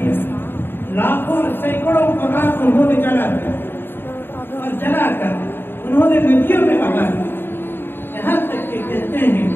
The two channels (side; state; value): right; late; 0.10 ms